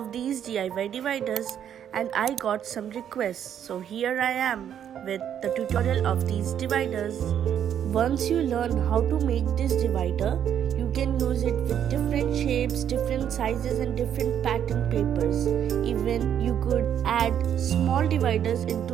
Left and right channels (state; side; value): quieter; left; 9.4 dB